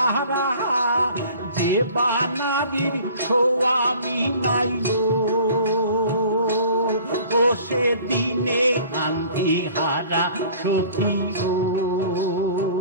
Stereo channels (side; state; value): both; inverted; correlation -0.48